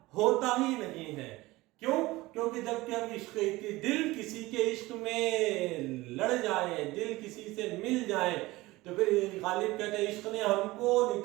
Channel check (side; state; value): left; quieter; 19.8 dB